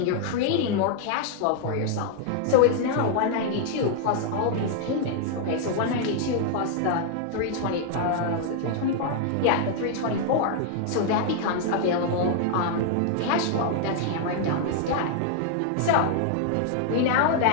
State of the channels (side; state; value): both; different; correlation 0.00